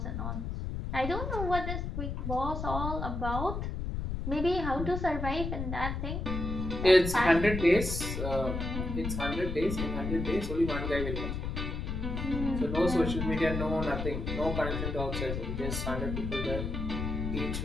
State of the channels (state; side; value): noise; left; rumble, 3 dB below the sound